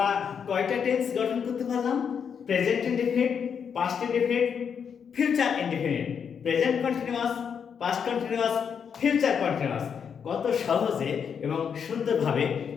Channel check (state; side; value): quieter; right; 7.1 dB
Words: কয়টা টেন্স গঠন করতে পারলাম? Present indefinite, past indefinite, future indefinite. Present continuous, past continuous, future continuous. কত সহজে এবং সুন্দরভাবে